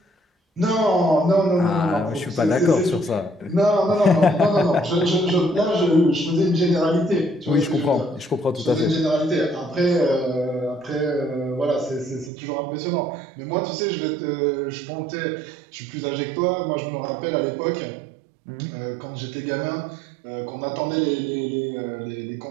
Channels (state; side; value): drops out; left; at 12.3 s